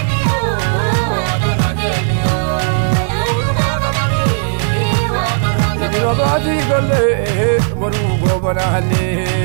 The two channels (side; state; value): left; silent; digital silence